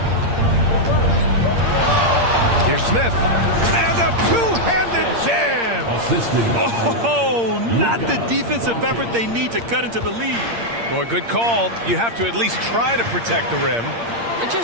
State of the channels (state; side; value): late; left; 8.7 ms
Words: Here's Smith. And a two-handed jam. Oh, not the defensive effort they need to cut into the lead. Boy, good call. You have to at least try to protect the rim. They're